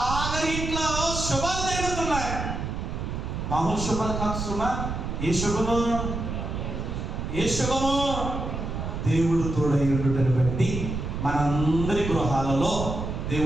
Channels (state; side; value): noise; right; rumble, 4 dB below the sound